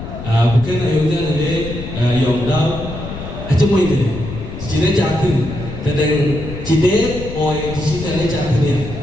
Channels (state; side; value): noise; left; rumble, 9 dB below the sound